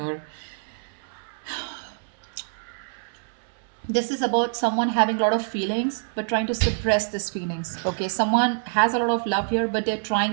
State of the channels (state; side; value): silent; left; 61 dB below the other